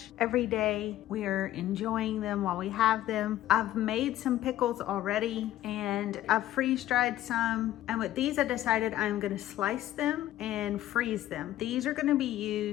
every day. We are enjoying them while we have them. I've made some pickles already, and I've freeze-dried some. And with these, I decided I'm gonna slice them and freeze them. These are gonna be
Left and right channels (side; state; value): right; quieter; 13.8 dB